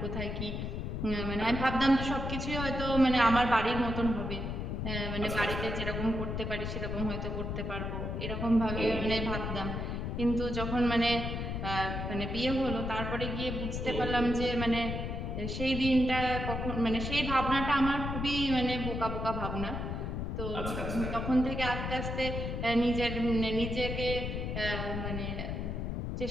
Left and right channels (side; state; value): left; noise; rumble, 3 dB below the sound